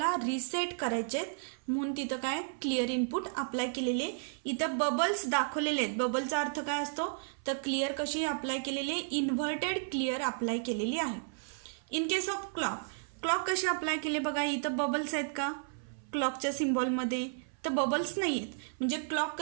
रिसेट करायचे आहेत, म्हणून तिथं काय क्लिअर इनपुट अप्लाय केलेले. इथं बबल्स दाखवलेले आहेत. बबलचा अर्थ काय असतो? तर क्लिअर कशी अप्लाय केलेली? इन्व्हर्टेड क्लिअर अप्लाय केलेली आहे. इन केस ऑफ क्लॉक कशी अप्लाय केले बघा. इथं बबल्स आहेत का क्लॉकच्या सिम्बॉलमध्ये? तर बबल्स नाही आहेत. म्हणजे क्लॉक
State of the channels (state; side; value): silent; left; 56 dB below the other